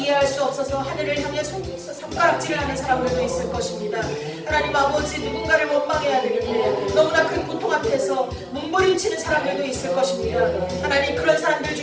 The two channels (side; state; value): both; identical; correlation 1.00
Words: 수 없어서 하늘을 향해 손가락질을 하는 사람들도 있을 것입니다. 하나님 아버지, 누군가를 원망해야 되는데 너무나 큰 고통 앞에서 몸부림치는 사람들도 있을 것입니다. 하나님, 그런 사람들